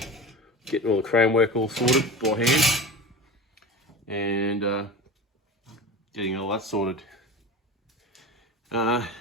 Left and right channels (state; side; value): normal; both; correlation 0.31